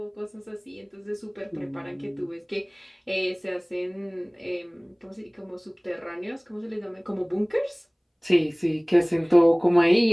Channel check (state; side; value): identical; both; correlation 1.00